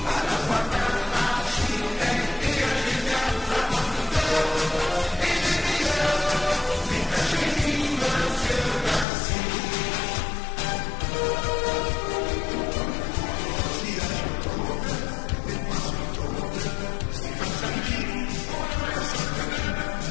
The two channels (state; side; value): drops out; right; at 9.1 s